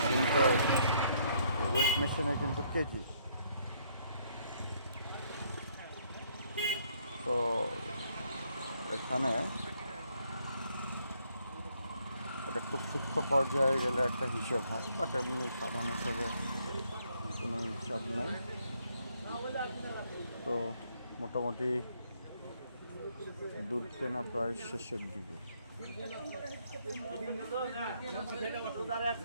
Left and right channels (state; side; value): inverted; both; correlation -0.70